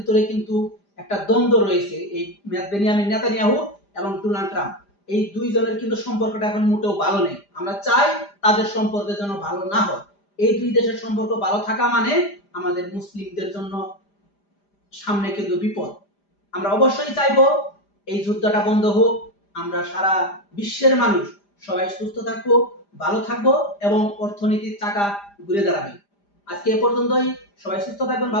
কিন্তু একটা দ্বন্দ্ব রয়েছে, এই বেনিয়ামিন নেতানিয়াহু এবং ডোনাল্ড ট্রাম্প, এই দুইজনের কিন্তু সম্পর্কটা এখন মোটেও ভালো নেই। আমরা চাই তাদের সম্পর্ক যেন ভালো না হয়। এই দুই দেশের সম্পর্ক ভালো থাকা মানে আমাদের মুসলিমদের জন্য সামনে কিন্তু বিপদ। আমরা অবশ্যই চাইবো এই যুদ্ধটা বন্ধ হোক, আমরা সারা বিশ্বের মানুষ সবাই সুস্থ থাকবো, ভালো থাকবো, এবং অর্থনীতির চাকা ঘুরে দাঁড়াবে। আজকে এ পর্যন্তই। সবাই সুস্থ থাকবেন,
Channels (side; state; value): right; late; 5.0 ms